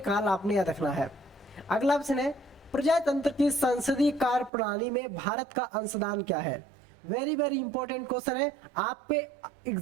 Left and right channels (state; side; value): drops out; left; at 4.5 s